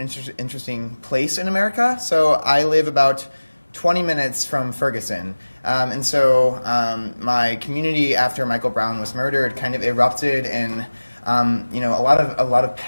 interesting place in America. So I live about 20 minutes from Ferguson. And so my community after Michael Brown was murdered kind of erupted in a lot of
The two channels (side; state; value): both; inverted; correlation -1.00